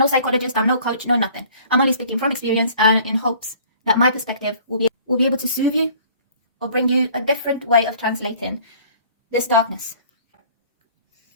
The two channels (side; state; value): both; inverted; correlation -0.53